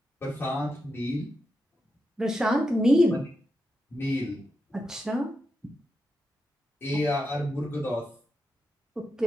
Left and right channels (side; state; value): both; normal; correlation 0.87